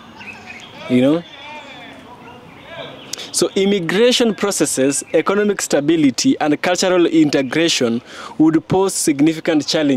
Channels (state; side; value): identical; both; correlation 1.00